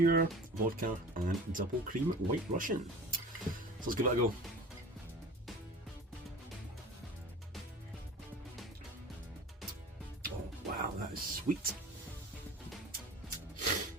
vodka and double cream White Russian. So let's give it a go. Oh wow, that is sweet.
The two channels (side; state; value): both; normal; correlation 0.38